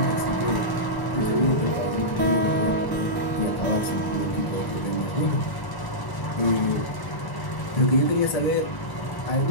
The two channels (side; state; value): right; late; 1.0 ms